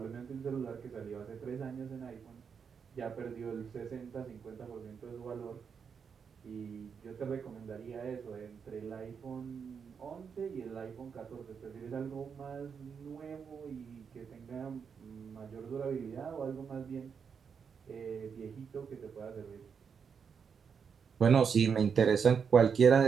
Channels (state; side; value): quieter; left; 6.5 dB